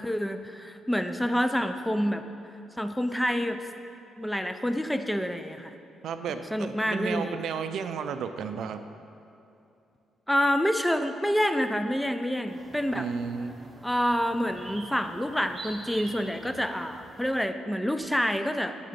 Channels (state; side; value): normal; both; correlation 0.93